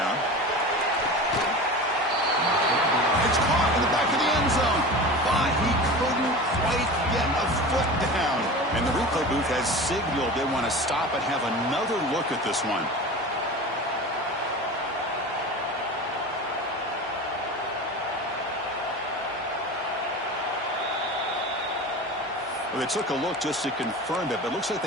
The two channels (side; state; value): both; normal; correlation 0.32